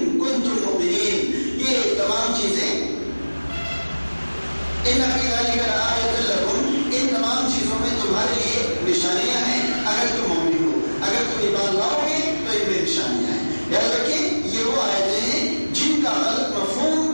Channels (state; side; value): inverted; both; correlation -1.00